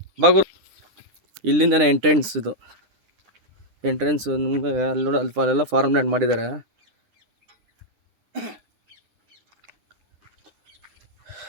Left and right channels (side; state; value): left; late; 9.9 ms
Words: ಬಾಗುರು ಇಲ್ಲಿಂದನೇ ಎಂಟ್ರೆನ್ಸ್. ಇದು ಎಂಟ್ರೆನ್ಸ್ ನಿಮಗೆ ಅಲ್ಲಿ ನೋಡಿ, ಅಲ್ಲೆಲ್ಲ ಫಾರ್ಮ್ ಲ್ಯಾಂಡ್ ಮಾಡಿದ್ದಾರೆ.